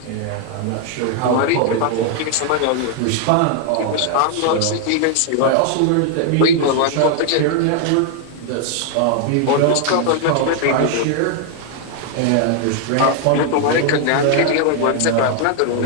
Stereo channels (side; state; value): both; different; correlation 0.00